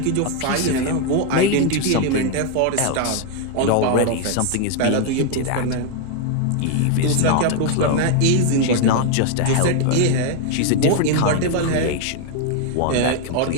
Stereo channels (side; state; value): both; different; correlation 0.01